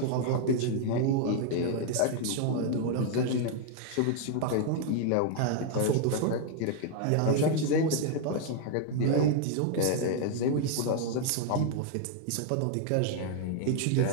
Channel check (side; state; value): both; different; correlation 0.00